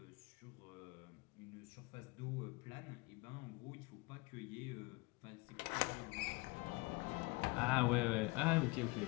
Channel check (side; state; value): right; quieter; 25.5 dB